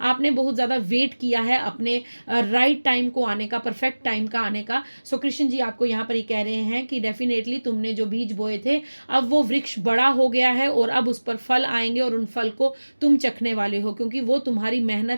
आपने बहुत ज़्यादा वेट किया है अपने राइट टाइम को आने का, परफेक्ट टाइम का आने का। सो कृष्ण जी आपको यहाँ पर ये कह रहे हैं कि डेफिनेटली तुमने जो बीज बोए थे अब वो वृक्ष बड़ा हो गया है, और अब उस पर फल आएंगे, और उन फल को तुम चखने वाले हो, क्योंकि वो तुम्हारी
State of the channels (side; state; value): both; inverted; correlation -1.00